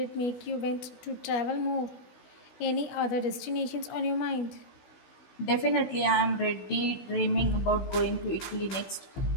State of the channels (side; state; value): right; late; 16 ms